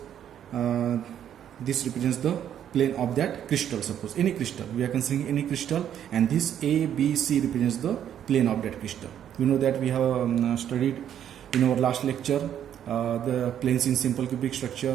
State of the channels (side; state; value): left; quieter; 9.9 dB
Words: this represents the plane of that crystal. Suppose any crystal, we are considering any crystal, and this A, B, C represents the plane of that crystal. We know that we have studied in our last lecture the planes in simple cubic structure,